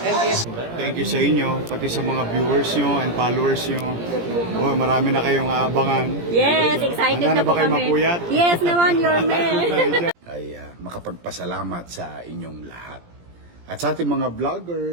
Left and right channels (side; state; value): left; late; 17 ms